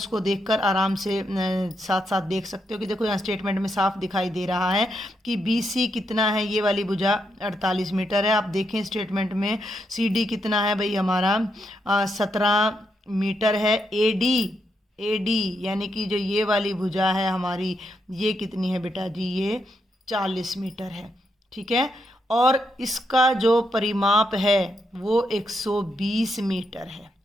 देखकर आराम से साथ साथ देख सकते हो कि देखो यहाँ स्टेटमेंट में साफ दिखाई दे रहा है कि BC कितना है, ये वाली भुजा 48 मीटर है। आप देखें स्टेटमेंट में CD कितना है भाई हमारा 17 मीटर है। AD यानी कि जो ये वाली भुजा है हमारी, ये कितनी है बेटा जी, ये 40 मीटर है, ठीक है। और इसका जो परिमाप है वो 120 मीटर है।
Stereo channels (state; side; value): normal; both; correlation 0.81